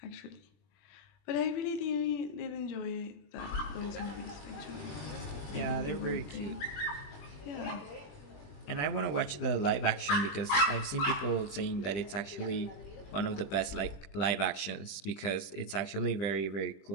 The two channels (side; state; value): right; late; 20 ms